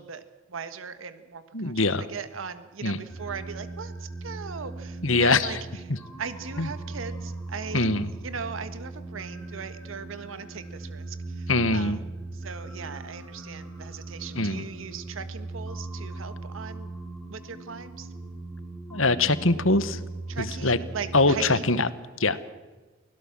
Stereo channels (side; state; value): both; normal; correlation 0.10